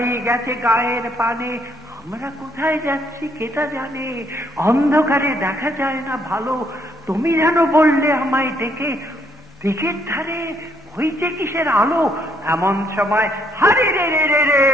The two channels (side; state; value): both; normal; correlation 0.70